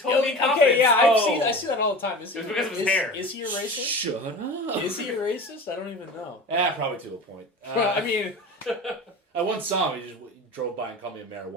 me in Okay, confidence. yeah, Oh. I see that all the time. Is It was he- because of his is- hair. Is he a racist? Shut up. Is he a racist? I don't even know. Yeah, probably to a point. Well, I mean, I once saw him. He just drove by and called me a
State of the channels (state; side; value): normal; both; correlation 0.33